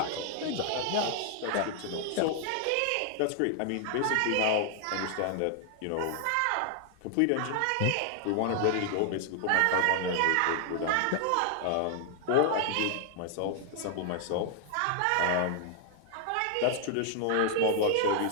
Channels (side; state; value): both; different; correlation 0.00